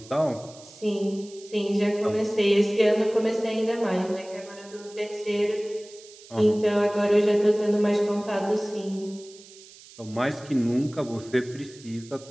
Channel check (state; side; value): noise; right; hiss, 21 dB below the sound